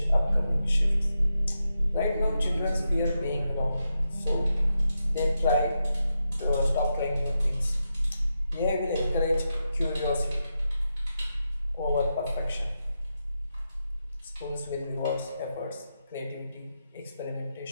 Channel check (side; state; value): both; inverted; correlation -0.86